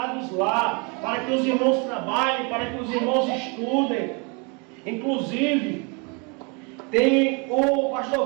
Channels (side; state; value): left; quieter; 32.4 dB